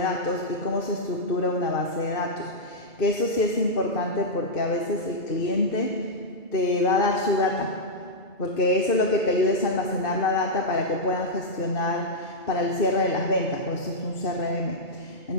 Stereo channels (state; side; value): late; right; 2.3 ms